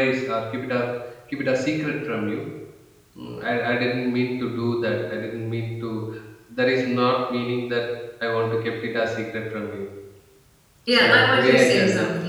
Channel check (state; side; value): identical; both; correlation 1.00